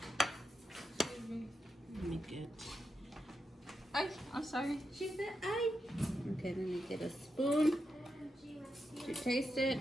me get. I'm sorry. She said Okay, let me get a spoon to taste it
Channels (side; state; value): both; normal; correlation 0.86